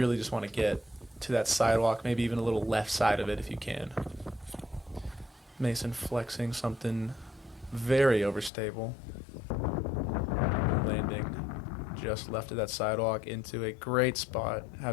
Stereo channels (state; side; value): drops out; right; at 8.5 s